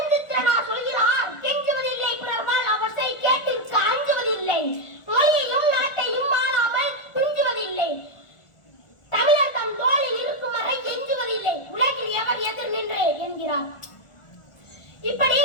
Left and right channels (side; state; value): right; late; 1.4 ms